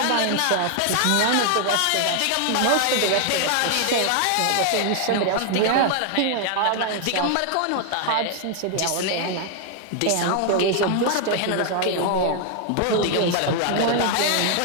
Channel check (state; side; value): different; both; correlation 0.00